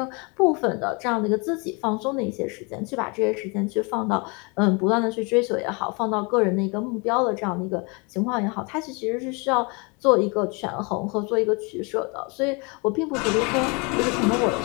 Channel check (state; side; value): quieter; right; 30.6 dB